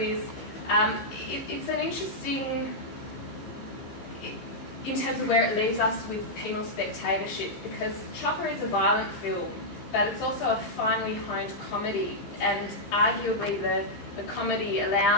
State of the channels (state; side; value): late; right; 15 ms